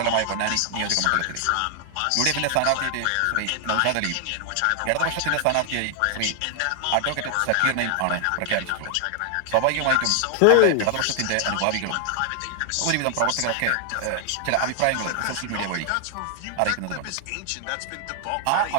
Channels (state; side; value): different; both; correlation 0.00